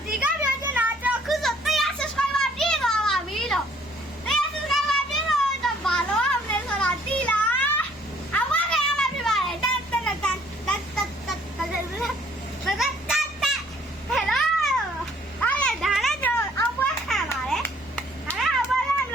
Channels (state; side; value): normal; both; correlation 0.61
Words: ဒီကပြောချင်တာကျွန်တော်ခုဆို100 subscriber ပြည့်သွားပါပြီလို့100 subscriber ပြည့်တော့ဘာလို့အောင်လဲဆိုတာသိလားအဝါကရမှာပြပါလေတက်ဟယ်လိုအားရဒါလည်းကျွန်တော်အောင်ပွဲခံပါတယ်ဒါလည်းအောင်ပွဲခံလ